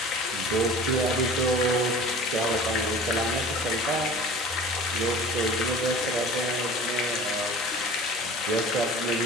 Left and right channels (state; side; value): normal; both; correlation 0.41